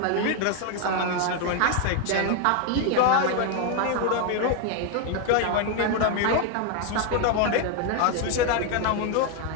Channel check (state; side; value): different; both; correlation 0.00